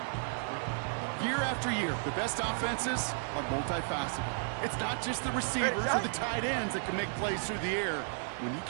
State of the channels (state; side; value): silent; left; 56 dB below the other